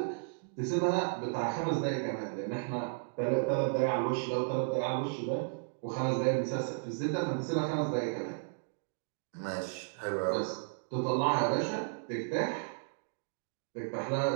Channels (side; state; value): left; silent; digital silence